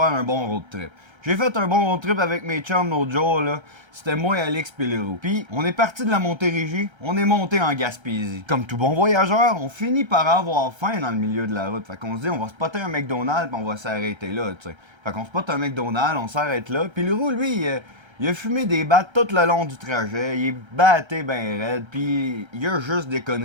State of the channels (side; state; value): left; late; 1.3 ms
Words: un bon road trip? J'ai fait un bon road trip avec mes chums l'autre jour, là. C'était moi, Alex pis Leroux. Puis, on est parti de la Montérégie, on est monté en Gaspésie. Comme tout bon voyageur, on finit par avoir faim dans le milieu de la route. Fait qu'on se dit, on va spotter un McDonald's pis on va s'arrêter là, tu sais. Fait qu'on spotte un McDonald's, on s'arrête là. Puis Leroux, lui, il a fumé des battes tout le long du trajet, il est batté ben raide, puis il y a juste des